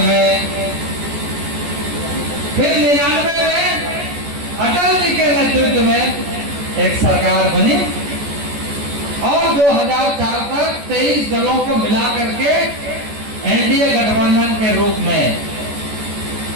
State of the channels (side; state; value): left; late; 14 ms